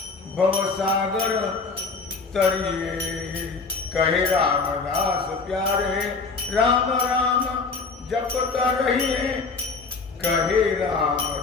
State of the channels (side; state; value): right; quieter; 4.4 dB